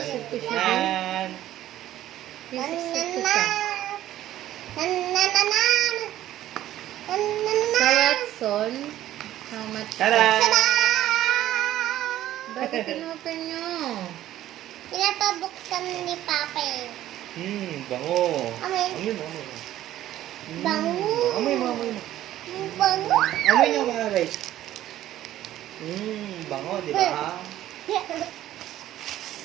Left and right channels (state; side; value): quieter; left; 13.3 dB